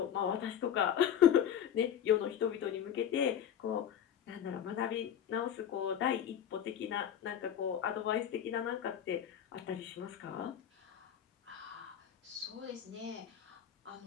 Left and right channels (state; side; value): quieter; right; 9.3 dB